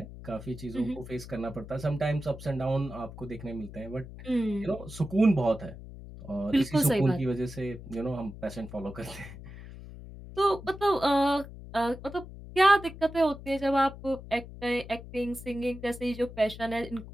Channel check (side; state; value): left; noise; hum, 14 dB below the sound